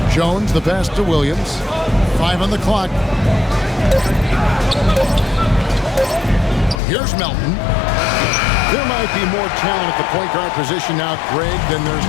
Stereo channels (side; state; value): right; drops out; at 6.8 s